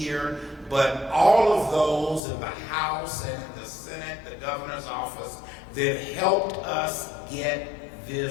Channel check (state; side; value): drops out; right; at 2.2 s